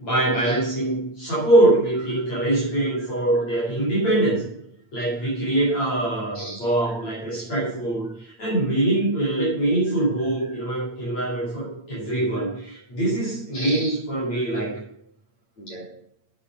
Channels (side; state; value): right; late; 8.7 ms